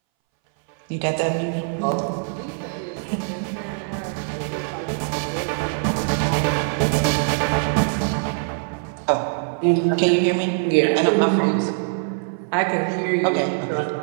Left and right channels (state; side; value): silent; left; 62 dB below the other